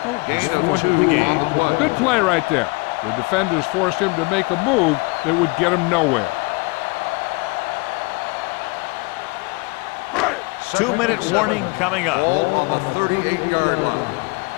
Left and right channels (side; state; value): right; quieter; 27.3 dB